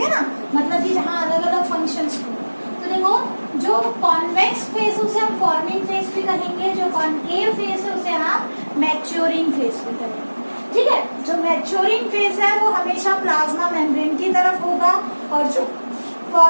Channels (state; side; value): inverted; both; correlation -1.00